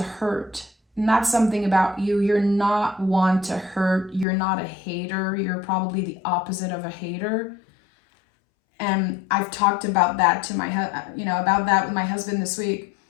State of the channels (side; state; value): right; drops out; at 4.2 s